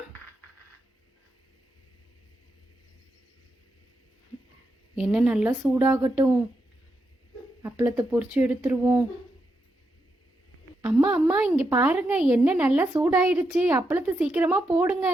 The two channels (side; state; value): both; normal; correlation 0.83